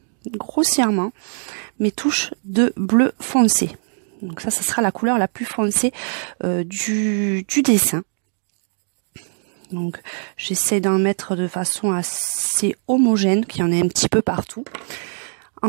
grossièrement mes touches de bleu foncé. Donc ça sera la couleur la plus foncée du dessin. Donc j'essaie d'en mettre de façon assez homogène, qu'il y en ait un petit peu partout.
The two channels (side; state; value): left; silent; digital silence